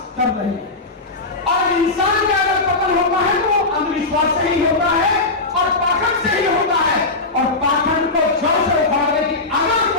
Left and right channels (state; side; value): quieter; right; 3.2 dB